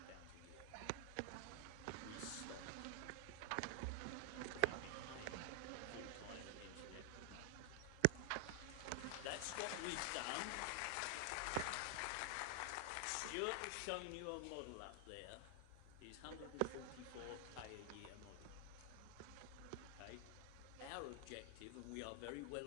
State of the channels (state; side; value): different; both; correlation 0.00